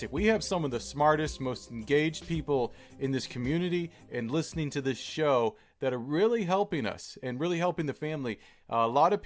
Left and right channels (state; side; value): identical; both; correlation 1.00